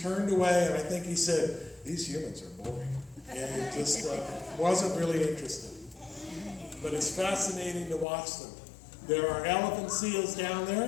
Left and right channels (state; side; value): drops out; right; at 8.1 s